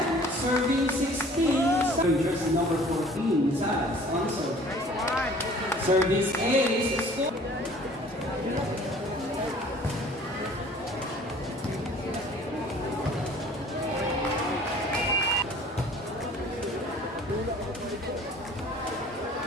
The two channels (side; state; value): both; normal; correlation 0.51